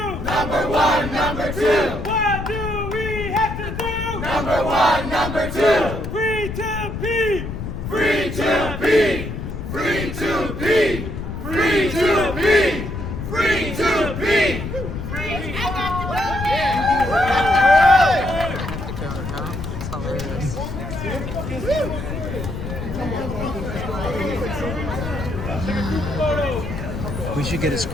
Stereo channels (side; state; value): left; noise; rumble, 6 dB below the sound